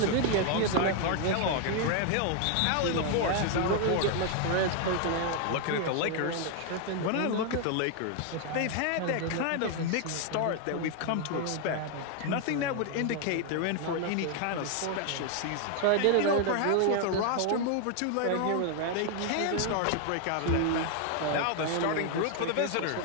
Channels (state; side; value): different; both; correlation 0.00